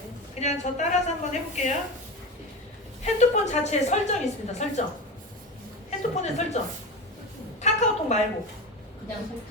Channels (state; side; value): normal; both; correlation 0.25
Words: 그냥 저 따라서 한번 해볼게요. 핸드폰 자체에 설정이 있습니다. 설정. 핸드폰에 설정. 카카오톡 말고. 그냥